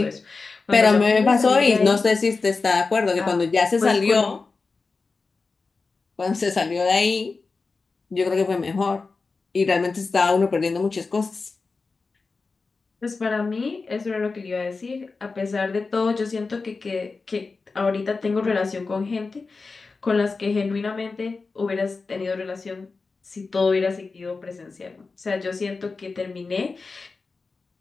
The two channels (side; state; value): right; quieter; 4.2 dB